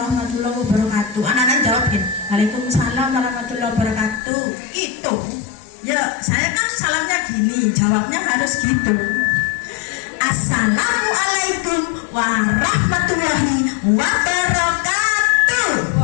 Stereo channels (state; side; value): drops out; right; at 4.2 s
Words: wabarakatuh. Anak-anak jawabin, Waalaikumsalam warahmatullahi wabarakatuh. Itu, ya saya kan salamnya gini, jawabnya harus gitu. Assalamualaikum warahmatullahi wabarakatuh.